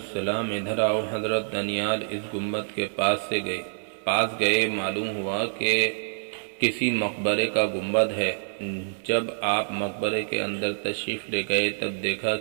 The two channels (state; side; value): silent; left; 58 dB below the other